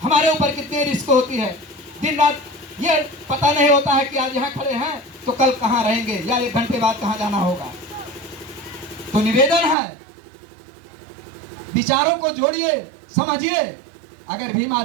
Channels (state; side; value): drops out; left; at 9.8 s